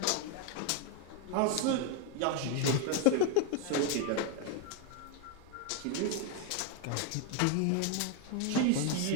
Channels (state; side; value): different; both; correlation 0.01